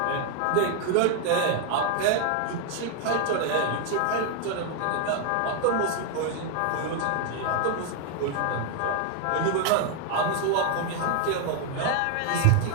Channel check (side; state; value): both; different; correlation 0.00